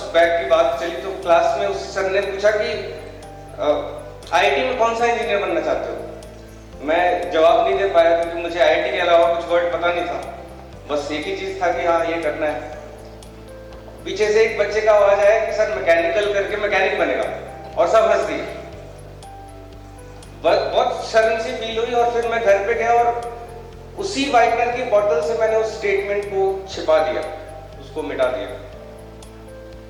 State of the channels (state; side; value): identical; both; correlation 1.00